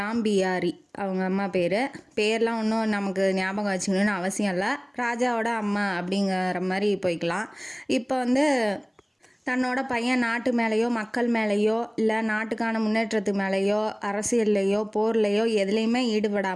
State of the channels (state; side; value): identical; both; correlation 1.00